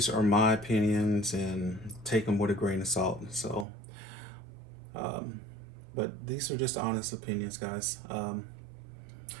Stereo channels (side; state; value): left; drops out; at 3.7 s